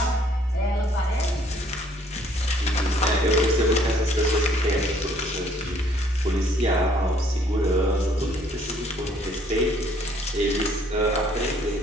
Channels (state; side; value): normal; both; correlation 0.62